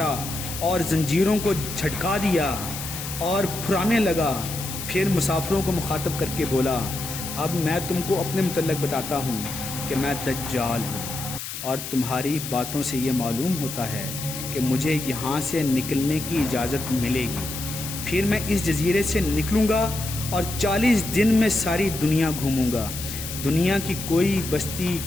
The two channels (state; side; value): noise; left; hiss, 8 dB below the sound